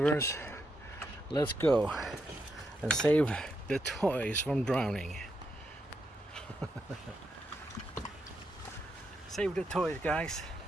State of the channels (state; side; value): normal; both; correlation 0.82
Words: Let's go and save the toys from drowning. Save the toys, guys.